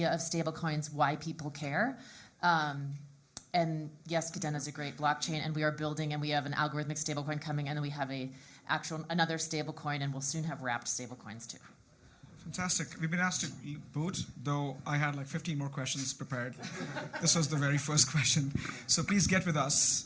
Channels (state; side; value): identical; both; correlation 1.00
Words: of stablecoins, why people care. And yes, Kadena is a great blockchain, and we are building, and we have an algorithmic stablecoin coming, and then we have another stablecoin, and we'll soon have wrapped stablecoins too. Fantastic. We've been asked to boot, though I had like 15 more questions prepared. This was the very first question. So please get with us.